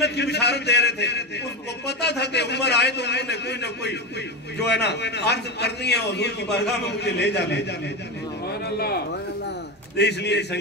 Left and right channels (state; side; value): normal; both; correlation 0.17